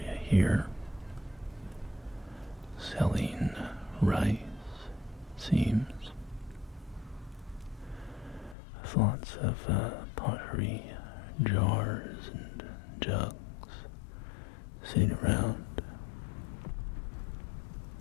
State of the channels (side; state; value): right; drops out; at 8.6 s